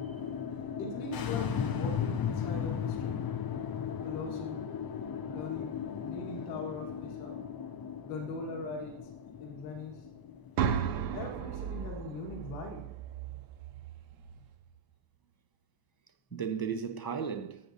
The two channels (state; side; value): late; right; 1.0 ms